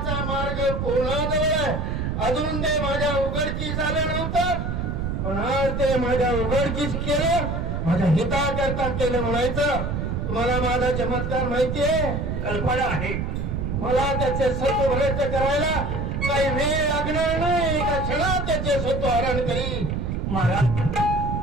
मार्ग कोणाजवळ आहे. अजून ते माझ्या उघडकीस आलं नव्हतं पण आज ते माझ्या उघडकीस केलं माझ्या हिताकरता केलं म्हणायचं. तुम्हाला माझा चमत्कार माहितीये कल्पना आहे. मला त्याचे सत्व भ्रष्ट करायला काही वेळ लागणार नाही. एका क्षणात त्याचे सत्व हरण करीन. महाराज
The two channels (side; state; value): right; noise; rumble, 2 dB below the sound